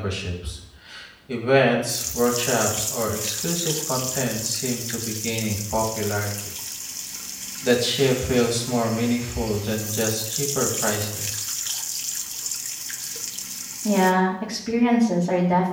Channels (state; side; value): identical; both; correlation 1.00